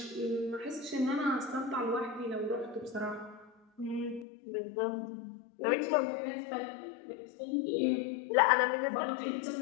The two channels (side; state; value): right; drops out; at 4.2 s